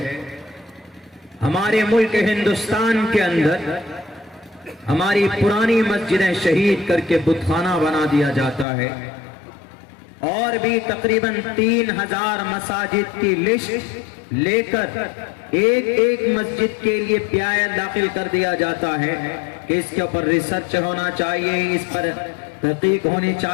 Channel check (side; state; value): right; drops out; at 8.7 s